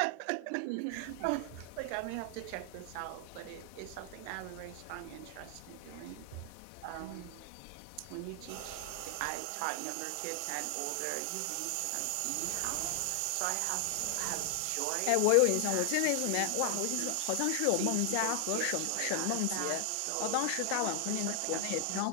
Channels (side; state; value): both; different; correlation 0.00